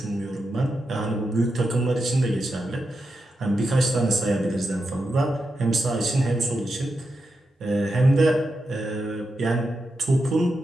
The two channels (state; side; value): normal; both; correlation 0.87